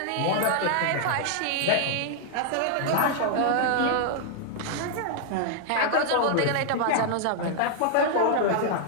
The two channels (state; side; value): different; both; correlation -0.01